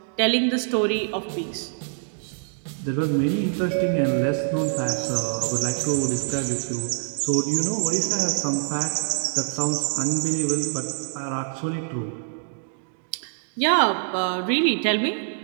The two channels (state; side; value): silent; left; digital silence